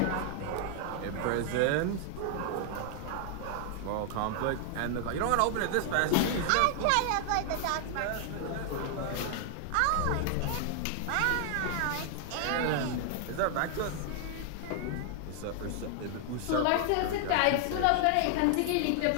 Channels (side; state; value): both; different; correlation 0.00